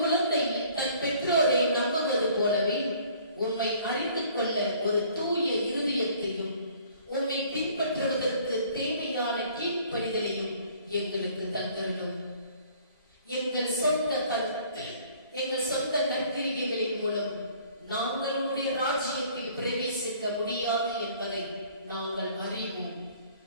குழந்தை தன் பெற்றோரை நம்புவது போலவே உம்மை அறிந்து கொள்ள ஒரு தூய இருதயத்தையும் உம்மை பின்பற்றுவதற்கு தேவையான கீழ்ப்படிதலையும் எங்களுக்கு தந்தருளும். எங்கள் சொந்த நற்கிரிகைகளின் மூலம் நாங்கள் உம்முடைய ராஜ்யத்தில் பிரவேசிக்க முடியாது என்பதை நாங்கள் அறிவோம்.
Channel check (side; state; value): both; inverted; correlation -0.56